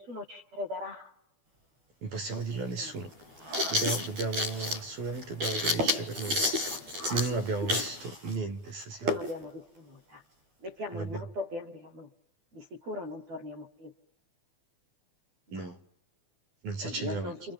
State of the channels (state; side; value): late; left; 12 ms